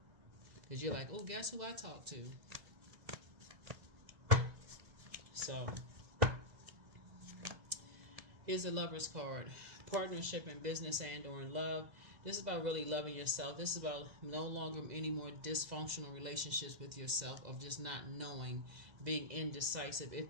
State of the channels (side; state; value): left; late; 2.0 ms